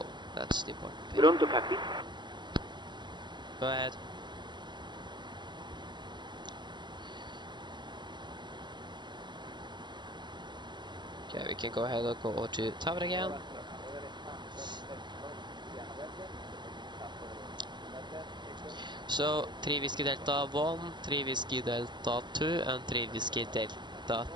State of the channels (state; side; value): late; left; 0.22 ms